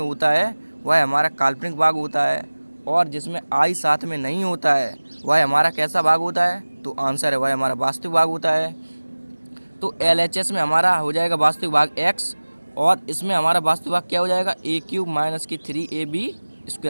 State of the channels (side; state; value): both; inverted; correlation -1.00